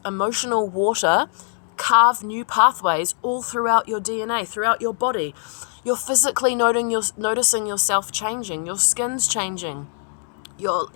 emotional water, carve new pathways all throughout your DNA, throughout your body. You're physically noticing yourself changing, your skin's changing,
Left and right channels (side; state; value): right; silent; digital silence